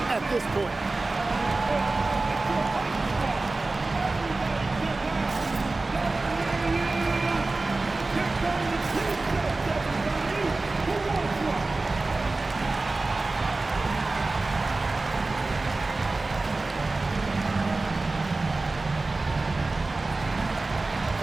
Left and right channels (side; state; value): left; quieter; 3.3 dB